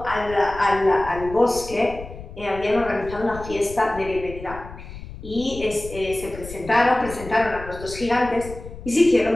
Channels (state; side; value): noise; left; rumble, 13 dB below the sound